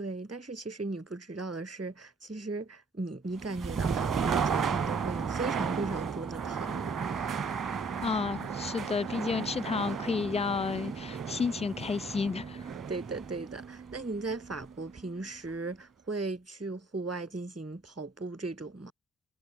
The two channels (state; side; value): normal; both; correlation 0.60